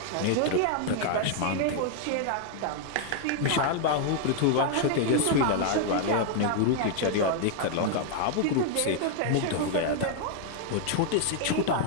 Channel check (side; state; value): both; different; correlation 0.00